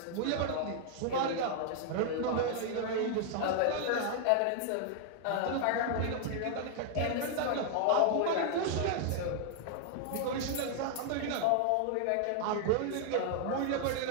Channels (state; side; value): different; both; correlation 0.00